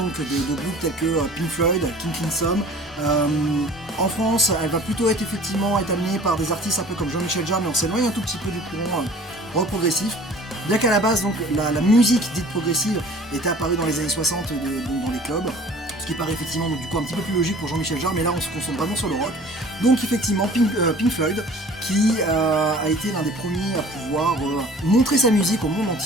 de groupes tels que Pink Floyd, King Crimson. En France, elle va plutôt être amenée par des artistes un peu comme Jean-Michel Jarre, mais on s'éloigne un tout petit peu du courant rock progressif. Bien qu'à la base, donc, la musique dite progressive était apparue dans les années 60 dans les clubs, ce qui paraît effectivement donc, du coup un petit peu plus logique pour Jean-Michel Jarre, mais là on se concentre vraiment sur le rock. Donc effectivement Pink Floyd qui a été l'un des premiers à pouvoir montrer sa musique au monde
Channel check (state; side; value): normal; both; correlation 0.47